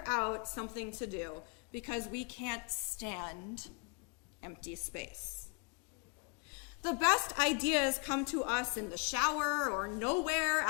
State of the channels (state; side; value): quieter; right; 33.4 dB